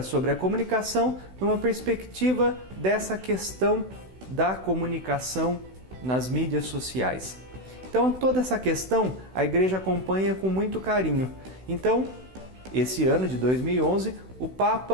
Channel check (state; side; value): late; left; 16 ms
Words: sobre a comunicação numa perspectiva dessa questão da comunicação nas mídias sociais. Então, toda essa questão a Igreja acompanha com muito carinho. Então, esse ano de 2011, o